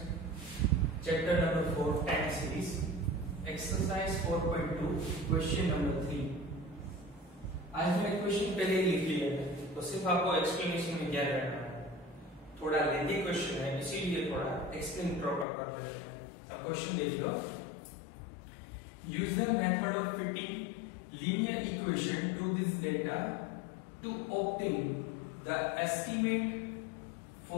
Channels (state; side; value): drops out; right; at 15.5 s